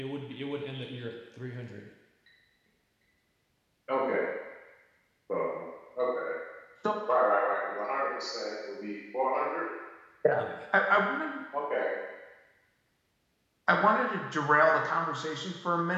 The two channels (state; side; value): identical; both; correlation 1.00